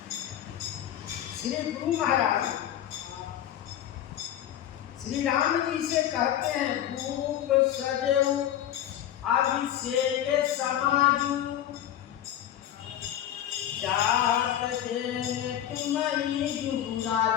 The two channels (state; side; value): quieter; right; 11.3 dB